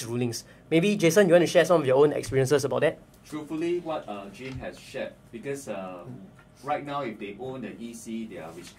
rulings. Maybe Jason, you want to share some of your own experiences about that? Truthfully, what Jim has shared, because right now if they own the EC, they are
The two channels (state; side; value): identical; both; correlation 1.00